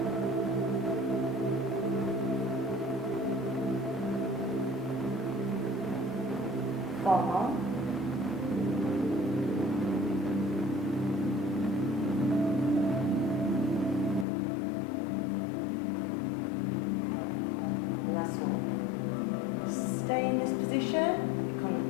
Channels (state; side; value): drops out; right; at 14.2 s